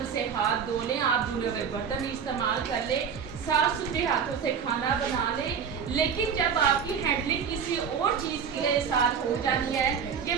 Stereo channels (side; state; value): left; quieter; 7.0 dB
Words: से हाथ धो लें, आप धुले हुए बर्तन इस्तेमाल कर ले, साफ सुथरे हाथों से खाना बना ले, लेकिन जब आपकी हैंडलिंग किसी और चीज़ के साथ हो जाती है,